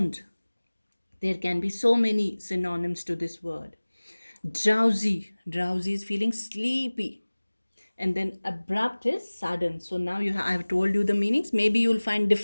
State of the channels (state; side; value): inverted; both; correlation -1.00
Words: There can be so many synonyms to this word. Drowsy. Drowsy is feeling sleepy. And then abrupt is sudden. So now I have told you the meanings. Maybe you'll find